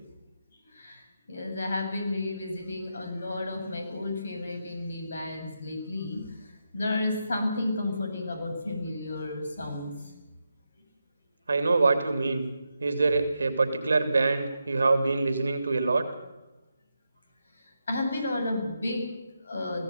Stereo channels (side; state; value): both; inverted; correlation -0.85